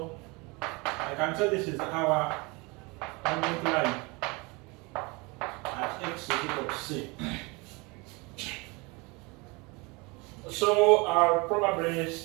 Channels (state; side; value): quieter; left; 27.0 dB